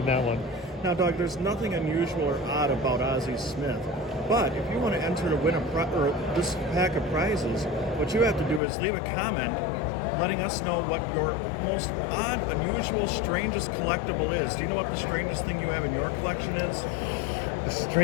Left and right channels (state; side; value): drops out; right; at 8.6 s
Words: that one. Now, Doug, there's nothing unusual or odd about Ozzie Smith, but if you want to enter to win this pack of prizes, what you have to do is leave a comment letting us know what your most odd, unusual, strangest collectible is. Do you know what the strangest thing you have in your collection is? The